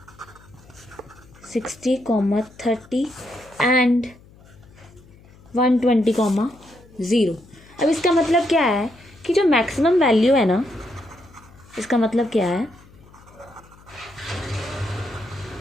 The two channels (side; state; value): left; noise; hum, 25 dB below the sound